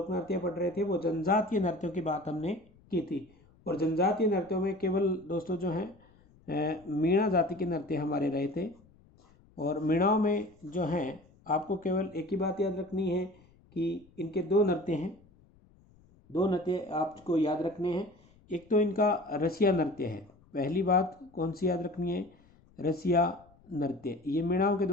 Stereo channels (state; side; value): noise; left; rumble, 29 dB below the sound